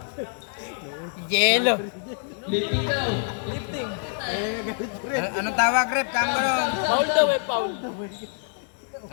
Yelo. Lifting daw. Lifting. Anong tawag, rep? Kamo. Foul daw eh, foul.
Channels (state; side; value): silent; right; 61 dB below the other